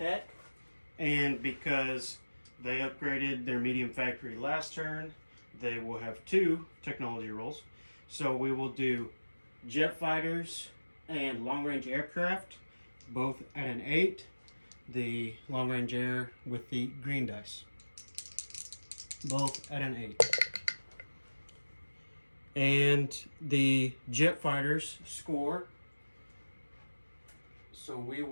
And because they upgraded their medium factory last turn, they will have 2 technology rolls. So we will do jet fighters and long-range aircraft, both at an 8. The long-range air with the green dice, both at an 8. And the jet fighters score, so we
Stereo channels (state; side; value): inverted; both; correlation -1.00